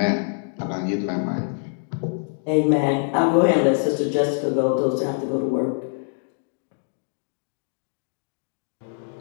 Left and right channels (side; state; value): right; silent; digital silence